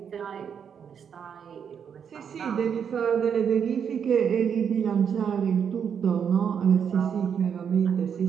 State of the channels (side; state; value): left; quieter; 7.5 dB